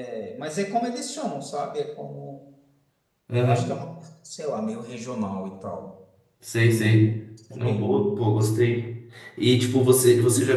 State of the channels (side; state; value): both; identical; correlation 1.00